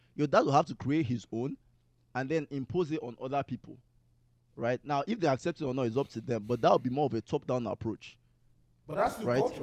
Your dad will have to create his own and then impose it on other people, right? Now, if they accept it or not, it's up to them. But that would be more of a top-down approach. But that's the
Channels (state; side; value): identical; both; correlation 1.00